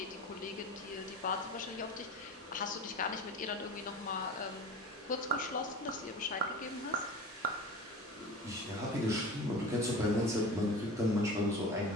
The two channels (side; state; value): both; normal; correlation 0.34